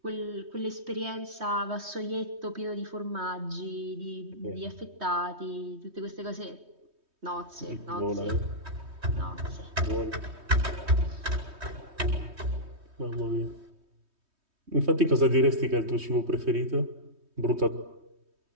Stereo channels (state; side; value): late; left; 3.2 ms